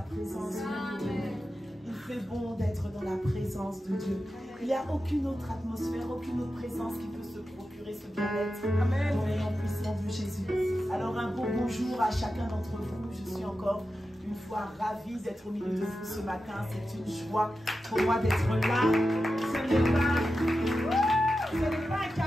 Il fait bon d'être dans la présence de Dieu. Il n'y a aucune autre atmosphère, aucune autre présence qui peut se procurer ce bien-être. Amen. Dans le nom puissant de Jésus. Alors un beau bonjour à chacun d'entre vous. Je suis encore une fois ravie d'être au milieu de vous ce matin. C'est une joie pour moi d'être là. Ce n'est pas un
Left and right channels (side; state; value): both; normal; correlation 0.91